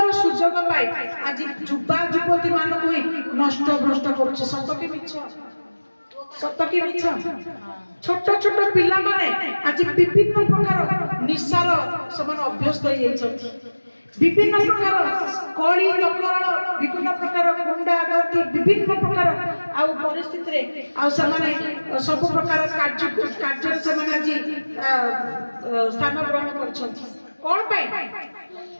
ସୁଯୋଗ ପାଇ ଆଜି ଯୁବା ଯୁବତୀ ମାନଙ୍କୁ ହିଁ ନଷ୍ଟ ଭ୍ରଷ୍ଟ କରୁଛି। ସତ କି ମିଛ? ସତ କି ମିଛ? ଛୋଟ ଛୋଟ ପିଲାମାନେ ଆଜି ବିଭିନ୍ନ ପ୍ରକାର ନିଶାର ସେମାନେ ଅଭ୍ୟସ୍ତ ହେଇଯାଇଛନ୍ତି। विभिन्न प्रकार कली दंगल विभिन्न प्रकार गुंडा गर्दी विभिन्न प्रकार आउ परिस्थिति रे आउ समाने सब प्रकार कार्य समाने आज स्थान ग्रहण करछथि कोन पाई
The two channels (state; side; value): inverted; both; correlation -1.00